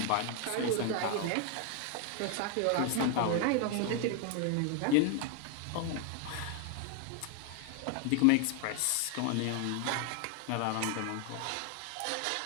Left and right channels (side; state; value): both; different; correlation 0.00